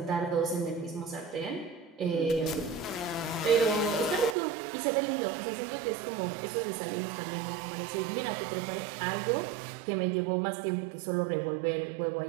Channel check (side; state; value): left; drops out; at 4.4 s